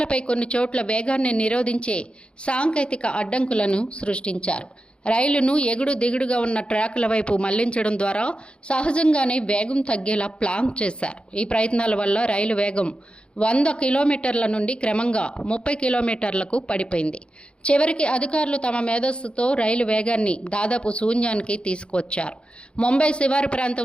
కొన్ని చోట్ల వేగాన్ని నిరోధించే సాంకేతిక అడ్డంకులను సృష్టించారు. రైలును ఎగుడు దిగుడుగా ఉన్న ట్రాకుల వైపు మళ్లించడం ద్వారా సహజంగానే వేగం తగ్గేలా ప్లాన్ చేశారు. ఈ ప్రయత్నాల వల్ల రైలు వేగం 100 కిలోమీటర్ల నుండి క్రమంగా 30 కిలోమీటర్లకు పడిపోయింది. చివరికి అధికారులు తమ మేధస్సుతో రైలు వేగాన్ని దాదాపు శూన్యానికి తీసుకువచ్చారు. ముంబై శివారు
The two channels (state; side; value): late; right; 0.056 ms